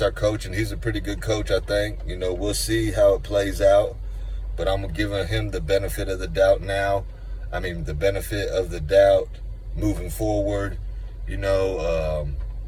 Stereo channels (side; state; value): both; identical; correlation 1.00